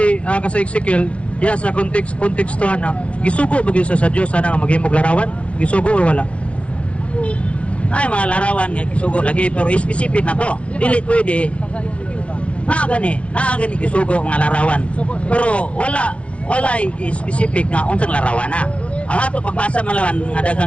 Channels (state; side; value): late; right; 0.062 ms